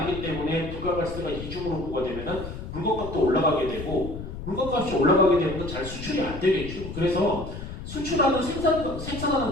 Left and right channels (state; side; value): noise; left; rumble, 9 dB below the sound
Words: 때문에 부가가치세가 이중으로 부과되면은 물건값도 올라가게 되고 물건값이 올라가게 되면 잘 수출이 안 되겠죠. 그래서 수출하는